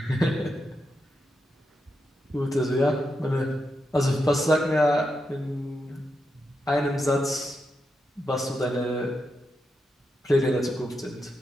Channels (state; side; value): normal; both; correlation 0.85